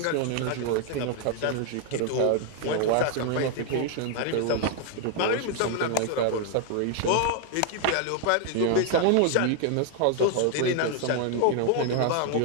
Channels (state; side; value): different; both; correlation 0.00